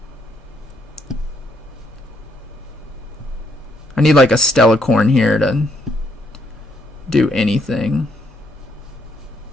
I need like a Stellacorn here to do anything.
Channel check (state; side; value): normal; both; correlation 0.73